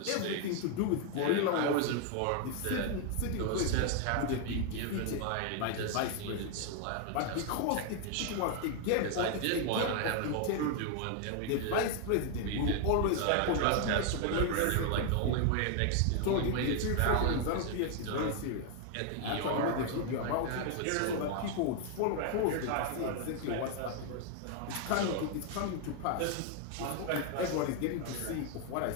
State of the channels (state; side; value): different; both; correlation 0.00